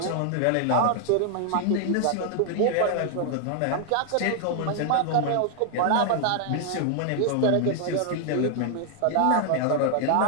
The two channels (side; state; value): both; different; correlation 0.00